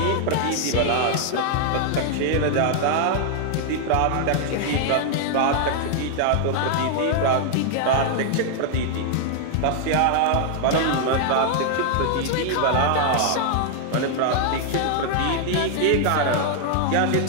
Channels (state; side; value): different; both; correlation 0.00